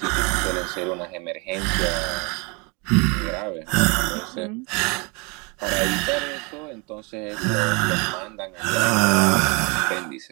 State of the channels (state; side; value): quieter; left; 30.6 dB